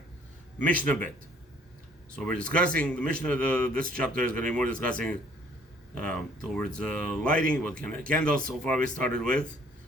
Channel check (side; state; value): both; normal; correlation 0.59